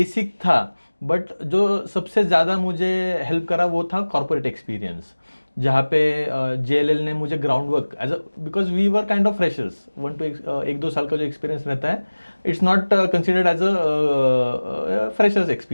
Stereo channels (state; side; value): inverted; both; correlation -1.00